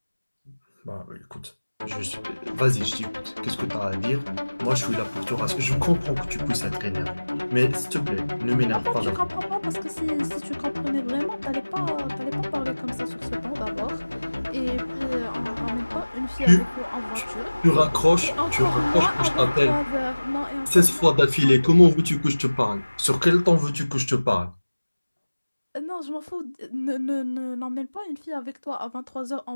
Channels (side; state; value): both; inverted; correlation -1.00